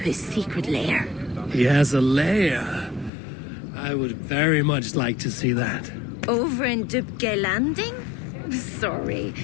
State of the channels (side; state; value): right; drops out; at 3.1 s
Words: secret lair. He has a lair. I would very much like to see that. Over in Dubke Landing? Sorry.